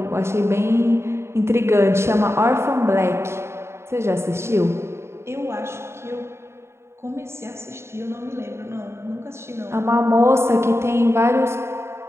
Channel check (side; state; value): left; late; 0.13 ms